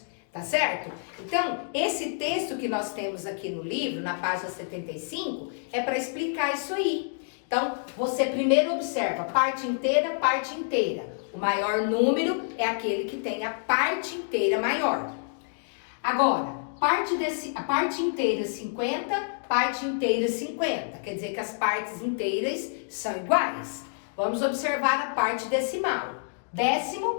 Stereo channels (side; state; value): right; silent; digital silence